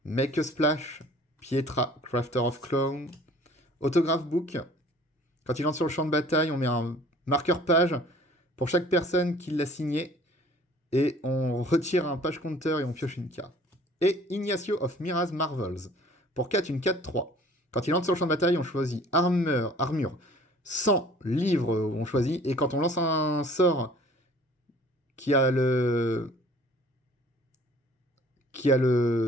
Make a Splash, Pietra, Crafter of Clown, Autograph Book. Quand il entre sur le champ de bataille, on met un marqueur page pour chaque personne qui l'a signé. Et on retire un page counter et on pioche une carte. Et Ignacio of Mira's Marvels. Pour 4, une 4-3. Quand il entre sur le champ de bataille, on choisit armure, 100 livres, on choisit. Et quand on lance un sort qui a ce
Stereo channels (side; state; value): both; normal; correlation 0.51